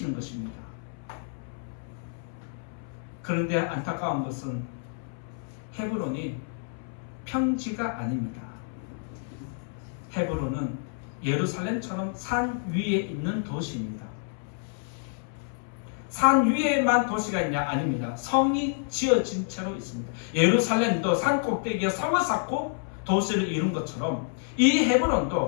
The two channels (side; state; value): right; silent; 59 dB below the other